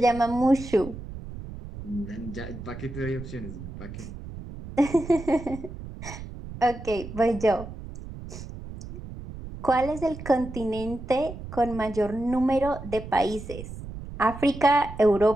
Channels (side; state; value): right; noise; rumble, 11 dB below the sound